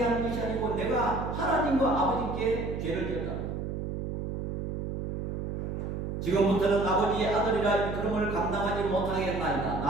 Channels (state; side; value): noise; right; hum, 4 dB below the sound